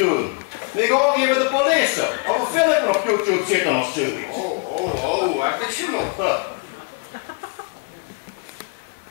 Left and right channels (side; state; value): right; quieter; 33.7 dB